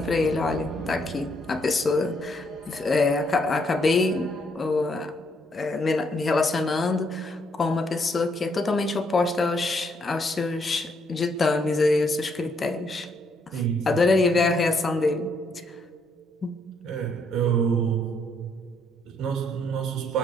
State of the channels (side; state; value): both; normal; correlation 0.72